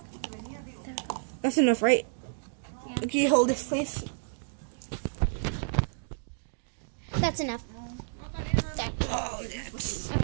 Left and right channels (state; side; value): silent; left; digital silence